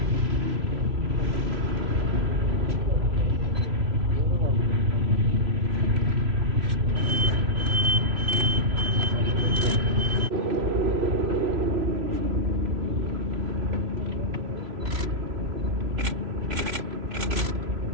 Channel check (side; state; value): left; late; 3.0 ms